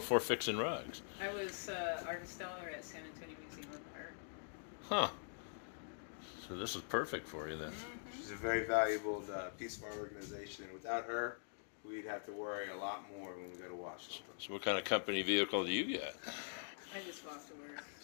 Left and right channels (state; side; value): silent; right; digital silence